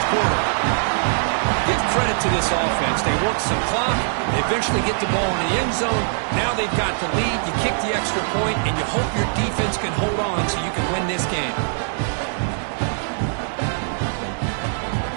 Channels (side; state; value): left; silent; digital silence